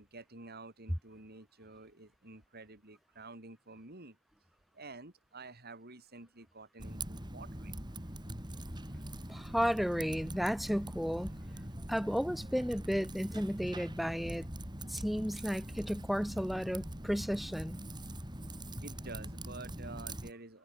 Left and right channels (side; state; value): both; normal; correlation 0.96